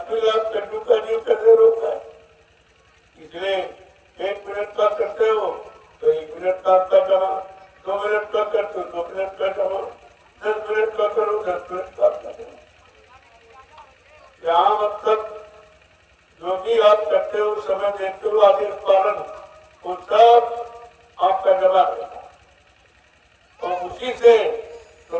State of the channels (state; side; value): identical; both; correlation 1.00